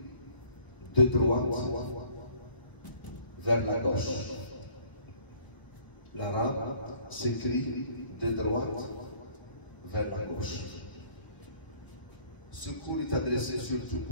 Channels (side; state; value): right; late; 1.0 ms